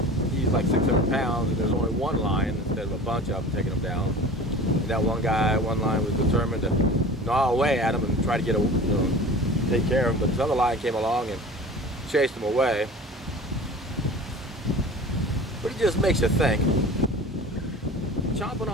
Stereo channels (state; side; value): normal; both; correlation 0.39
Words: he's like 600 pounds and there's only one lion instead of a bunch of them taking him down. And that one lion was determined to gnaw away at him and try to get take care of him, but this other lion came along and chased him away. But it just makes you think. Chomping